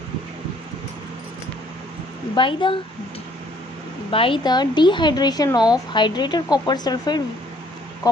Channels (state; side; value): normal; both; correlation 0.62